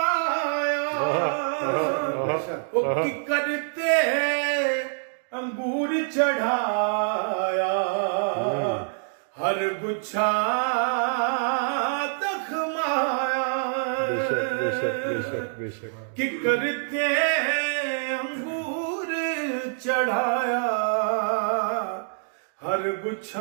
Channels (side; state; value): left; silent; digital silence